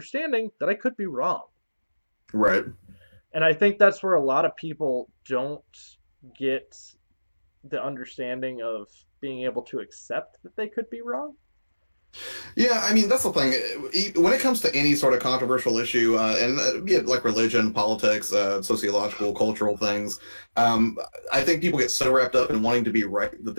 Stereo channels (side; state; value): both; inverted; correlation -1.00